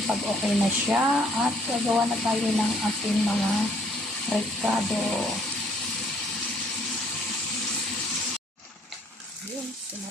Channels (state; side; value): normal; both; correlation 0.63